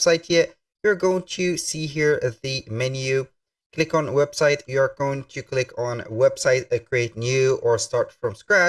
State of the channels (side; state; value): both; identical; correlation 1.00